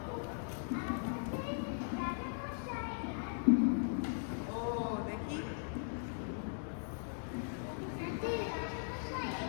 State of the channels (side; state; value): right; silent; digital silence